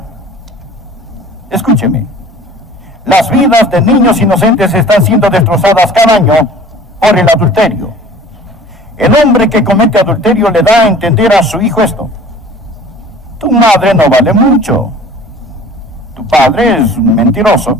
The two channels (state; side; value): normal; both; correlation 0.46